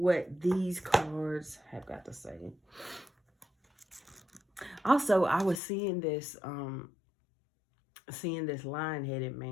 these cards have got to say. Also, I was seeing this lion-headed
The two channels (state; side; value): drops out; right; at 5.6 s